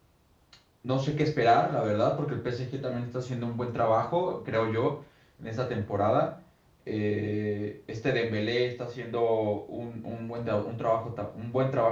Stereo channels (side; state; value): both; identical; correlation 1.00